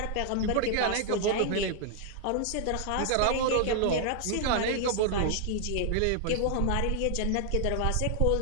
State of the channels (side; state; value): both; different; correlation -0.01